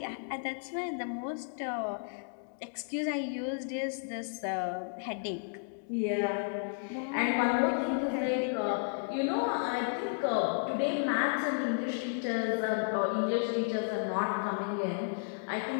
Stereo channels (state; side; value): silent; right; digital silence